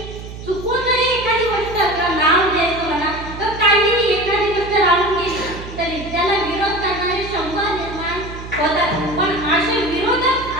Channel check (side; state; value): right; noise; hum, 12 dB below the sound